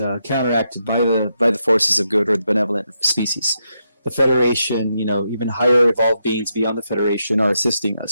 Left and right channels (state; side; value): inverted; both; correlation -0.82